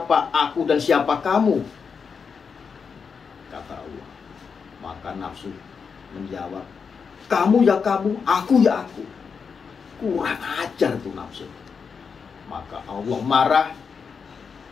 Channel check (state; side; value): quieter; right; 5.9 dB